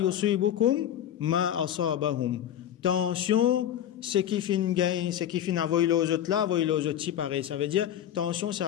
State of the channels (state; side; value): quieter; right; 10.6 dB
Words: ma asabahum. Tension, ce qui fin gain, ce qui fin avoyer les autres là, avoyer les autres si pareil. Ça veut dire, tension,